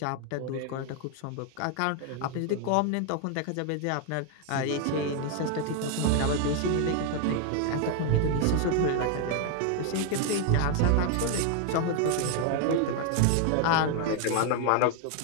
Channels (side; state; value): both; different; correlation 0.00